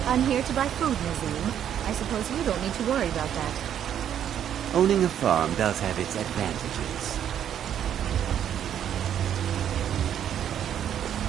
I'm here to buy food, Nazim. I suppose you don't need to worry about that. Owning a farm does have its advantages.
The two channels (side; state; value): left; quieter; 9.7 dB